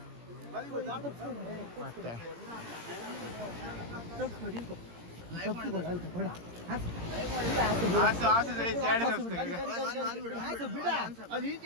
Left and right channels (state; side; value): late; left; 17 ms